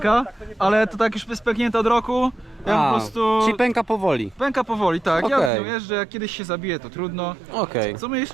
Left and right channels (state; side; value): drops out; left; at 5.5 s